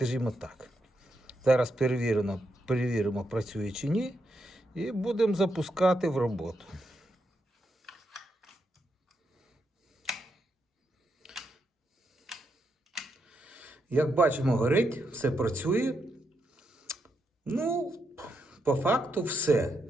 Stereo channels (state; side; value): normal; both; correlation 0.82